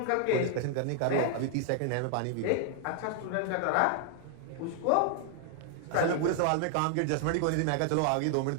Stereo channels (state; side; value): different; both; correlation 0.00